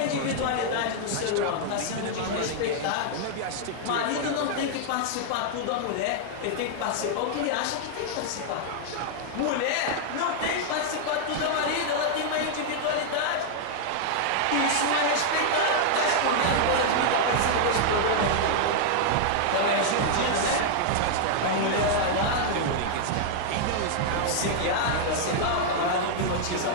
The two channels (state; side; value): different; both; correlation -0.01